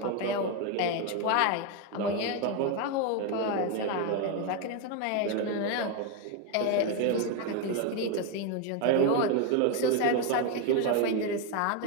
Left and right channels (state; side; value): different; both; correlation 0.02